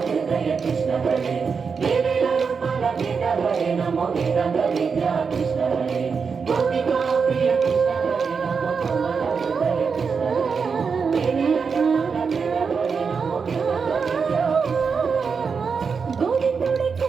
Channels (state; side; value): quieter; left; 5.6 dB